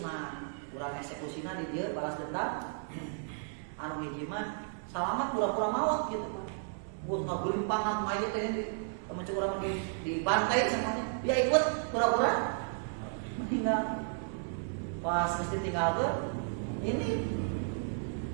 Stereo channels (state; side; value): silent; left; 55 dB below the other